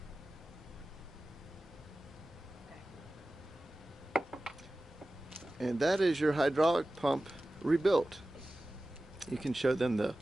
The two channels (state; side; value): normal; both; correlation 0.96